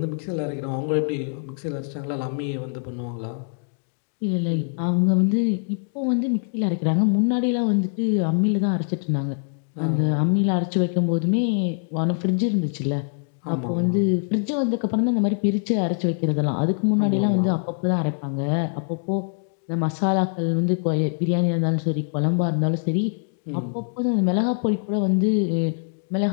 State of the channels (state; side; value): silent; right; digital silence